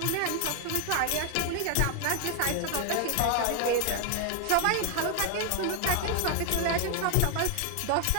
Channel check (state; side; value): different; both; correlation 0.00